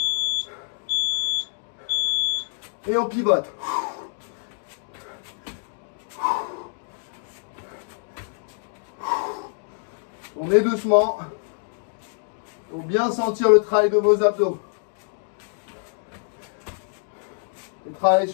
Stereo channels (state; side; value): silent; right; digital silence